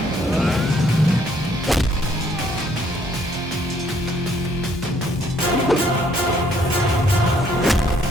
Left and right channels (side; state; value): both; normal; correlation 0.66